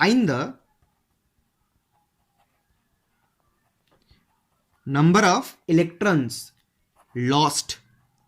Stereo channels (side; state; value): both; identical; correlation 1.00